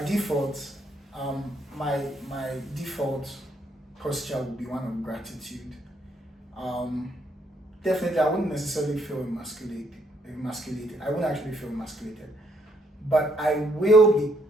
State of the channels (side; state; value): both; normal; correlation 0.71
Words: default, my default posture would be one of gratitude. Definitely, I wouldn't necessarily feel emasculated. I wouldn't actually feel emasculated, but I will be.